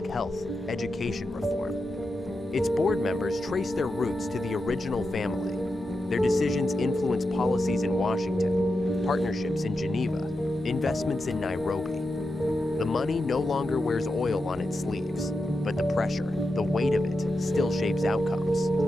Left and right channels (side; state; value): both; normal; correlation 0.89